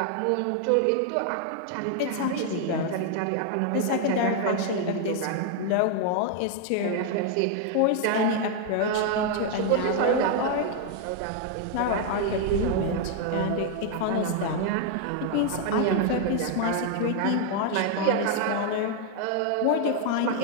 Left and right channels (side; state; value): both; different; correlation 0.00